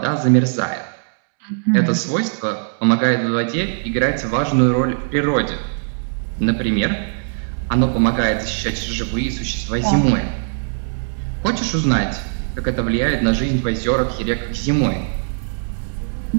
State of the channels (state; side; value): silent; left; 66 dB below the other